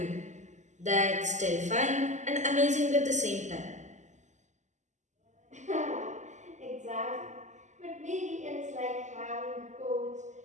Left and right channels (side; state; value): left; late; 0.34 ms